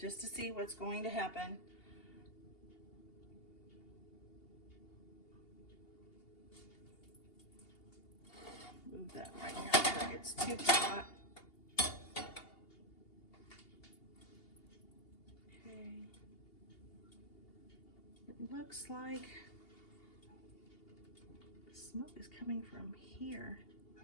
to see what's going to happen. Move that right now before it gets too hot. Okay. It looks like the smoke is coming from here,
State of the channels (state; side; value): late; right; 2.8 ms